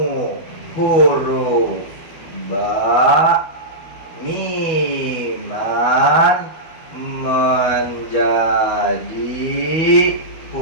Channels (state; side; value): late; right; 12 ms